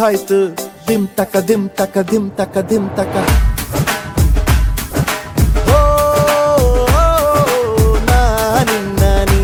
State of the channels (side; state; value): both; identical; correlation 1.00